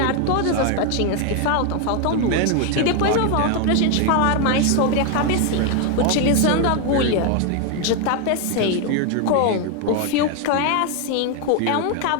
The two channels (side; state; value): both; different; correlation 0.01